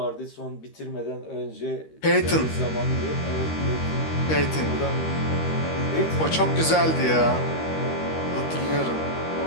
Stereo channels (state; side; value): late; right; 13 ms